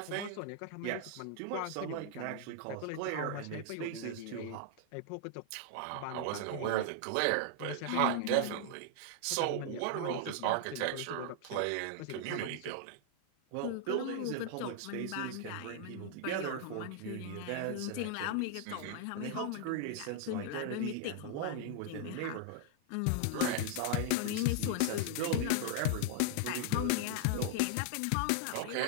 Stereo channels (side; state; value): both; different; correlation -0.01